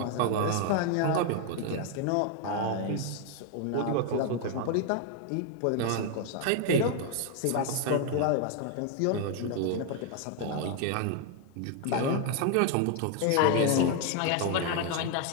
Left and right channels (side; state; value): both; different; correlation 0.01